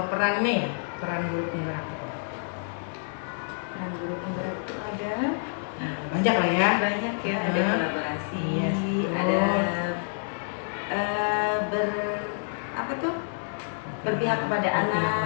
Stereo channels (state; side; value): silent; right; 60 dB below the other